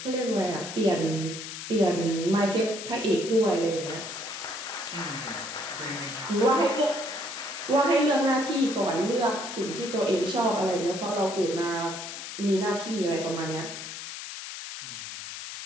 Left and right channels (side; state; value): left; noise; hiss, 9 dB below the sound